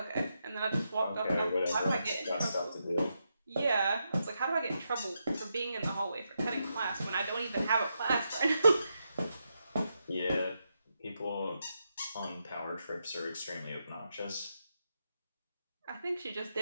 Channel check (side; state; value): both; inverted; correlation -0.84